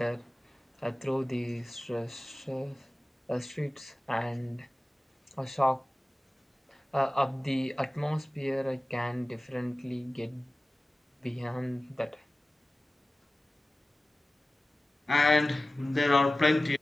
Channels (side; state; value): both; normal; correlation 0.96